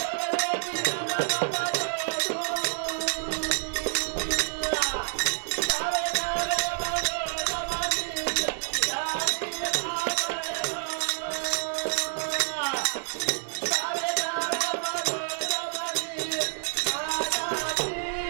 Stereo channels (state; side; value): silent; left; 59 dB below the other